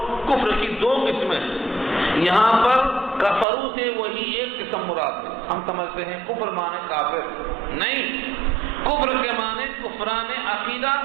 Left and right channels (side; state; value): left; drops out; at 3.5 s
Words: کفر کی دو قسمیں ہیں۔ یہاں پر کفرو سے وہی ایک قسم مراد ہے۔ ہم سمجھتے ہیں کفر مانے کافر، نہیں، کفر کے معنی کفران عقیدہ